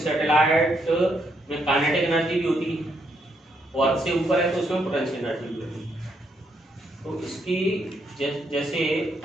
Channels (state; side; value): normal; both; correlation 0.75